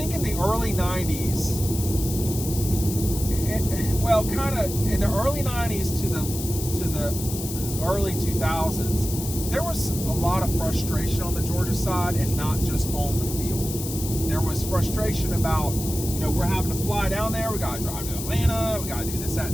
in the early 90s, kind of in the early 90s to the early 2000s, there was a lot of frustration on the Georgia side, and not just on the field. There was frustration about, we're having to fly down there. We got to drive to Atlanta. We got to do this, that,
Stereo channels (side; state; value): left; noise; hiss, 8 dB below the sound